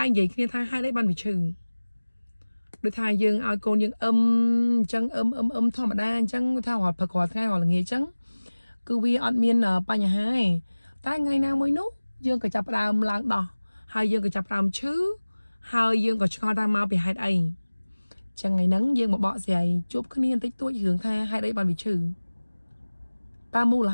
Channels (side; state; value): both; inverted; correlation -1.00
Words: រនិយាយគ្នាថាហេតុអីបានវាឈឺដូចថាយើងឲ្យកូនយើងអញ្ចឹងធម្មតាអញ្ចឹងថារាល់ព្រឹករាល់ថ្ងៃរាល់ល្ងាចអញ្ចឹងគឺវាអត់មានបញ្ហាទេតែថ្ងៃណាមួយនោះយើងក៏ចាប់ផ្ដើមឡើងដោះហើយយើងក៏ចាប់ផ្ដើមឈឺហើយយើងក៏ឆ្ងល់ថាមកពីហេតុអីចឹងថ្ងៃហ្នឹងយើងមកបកស្រាយជួបគ្នាបន្តិចតួចរឿងថាហេតុអីបានវាឈឺតើមូល